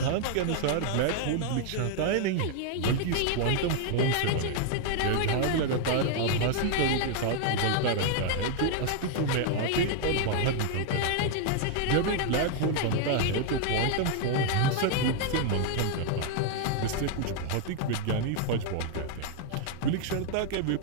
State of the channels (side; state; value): both; different; correlation 0.00